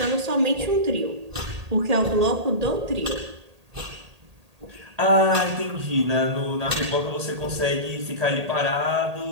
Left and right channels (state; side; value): late; left; 1.8 ms